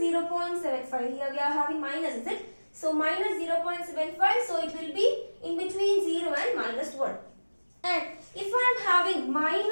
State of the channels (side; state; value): both; inverted; correlation -1.00